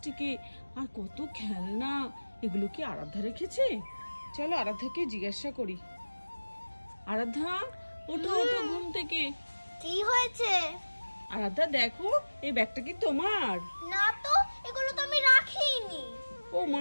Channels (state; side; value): inverted; both; correlation -1.00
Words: আর কত খেলনা। এগুলো কি আরাধ্যা রেখেছে? চলো আরাধ্যাকে জিজ্ঞাসা করি। আরাধ্যা, ওঠো ওঠো ঘুম থেকে। কি হয়েছে? আরাধ্যা দেখো, এই ব্যাগটা কি তোমার? না তো, এগুলো তো আমি রাখিনি। ও